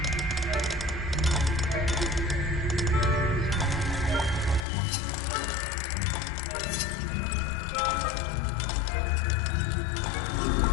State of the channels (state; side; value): drops out; right; at 4.7 s